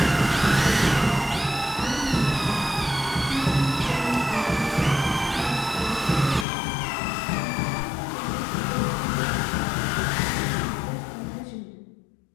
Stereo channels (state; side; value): drops out; right; at 6.5 s